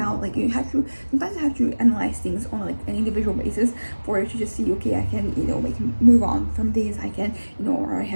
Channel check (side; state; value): both; inverted; correlation -1.00